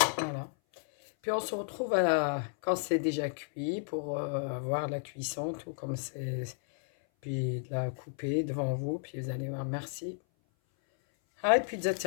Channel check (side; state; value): right; silent; 56 dB below the other